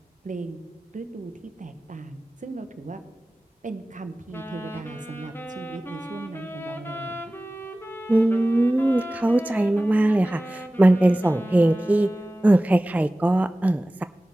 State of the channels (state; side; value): normal; both; correlation 0.97